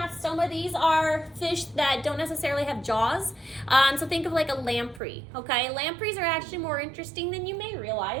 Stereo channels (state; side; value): drops out; left; at 5.0 s